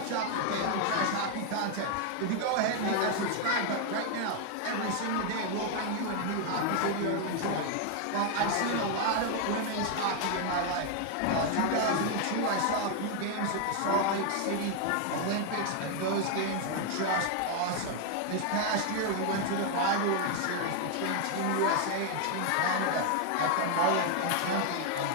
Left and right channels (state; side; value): different; both; correlation 0.00